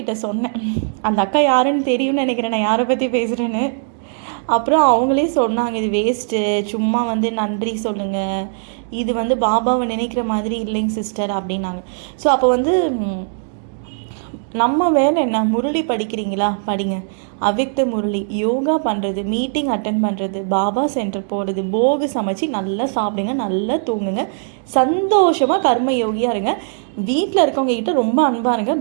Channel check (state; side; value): silent; left; digital silence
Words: சொன்னேன், அந்த அக்கா யாருன்னு தெரியும்னு நினைக்கிறேன் நான் யாரை பற்றி பேசுகிறேன்னு. அப்புறம் அவங்களே சொன்னாங்க இது வேஸ்ட்டு, சும்மா வந்து நன்றி சொல்லுங்கள், இது வந்து பாபாவை நினைக்கிற மாதிரி இல்லைங்க சிஸ்டர் அப்படின்னாங்க. ஸோ அப்போ வந்து நம்ம வேலை என்ன, முரளி படிக்கிறீங்களா படிங்க, அவ்யக்த முரளி யோகா பண்ணுறது, மீட்டிங் அட்டென்ட் பண்ணுறது, பாபா சென்டர் போகிறது, போகு சமைச்சு நல்லா சாப்பிடுங்க, நல்லா தூங்குங்க, சந்தோஷமாக கர்ம யோகியாக இருங்க, வீட்டில் இருக்கவங்க கிட்ட ரொம்ப அன்பாக இருங்க,